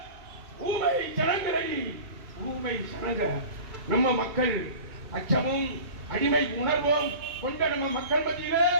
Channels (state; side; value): late; left; 2.6 ms